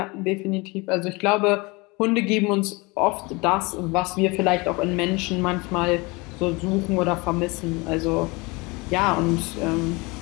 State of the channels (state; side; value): quieter; right; 25.8 dB